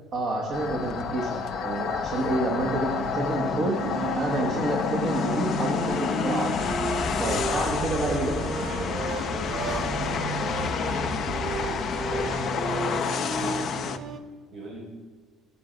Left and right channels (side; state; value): both; normal; correlation 0.62